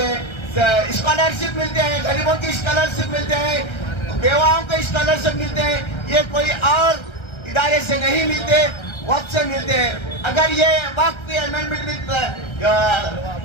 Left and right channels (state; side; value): late; right; 1.3 ms